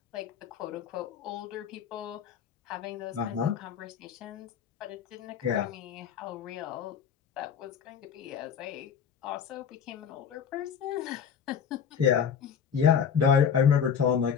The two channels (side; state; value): right; quieter; 7.5 dB